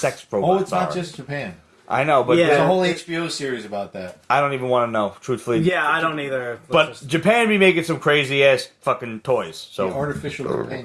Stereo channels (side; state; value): both; identical; correlation 1.00